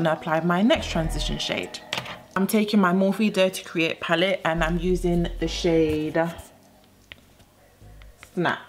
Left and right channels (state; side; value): identical; both; correlation 1.00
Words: to apply my next transition shade. I'm taking my Morphe Dare to Create palette and I'm using the shade